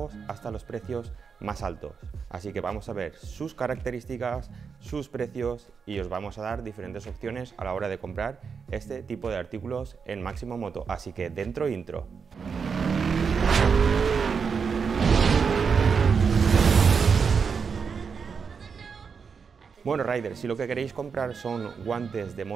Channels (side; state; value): left; quieter; 5.9 dB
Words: hasta los precios más altos. Así que vamos a ver sus características, sus precios y os vamos a dar diferentes opciones a la hora de comprar este tipo de artículos en Máximo Moto. Así que dentro intro. Bueno riders, si lo que queréis comprar son guantes de